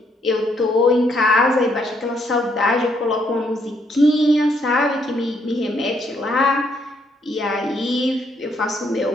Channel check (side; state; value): both; normal; correlation 0.72